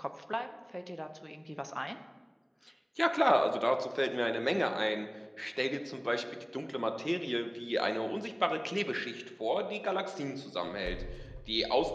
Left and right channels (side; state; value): both; identical; correlation 1.00